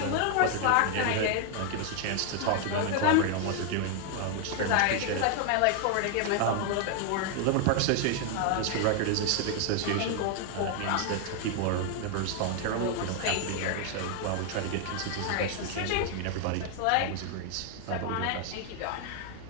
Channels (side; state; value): both; different; correlation 0.00